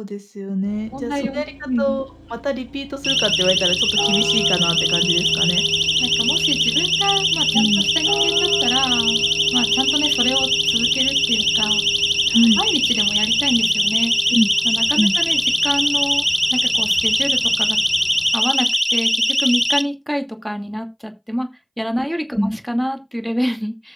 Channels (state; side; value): identical; both; correlation 1.00